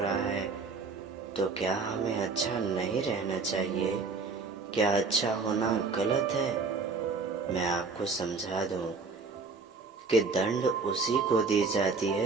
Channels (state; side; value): quieter; left; 4.4 dB